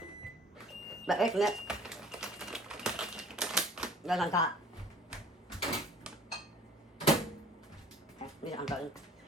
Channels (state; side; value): normal; both; correlation 0.51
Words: But wait a minute. Goes on top. Okay, these are unbuttoned.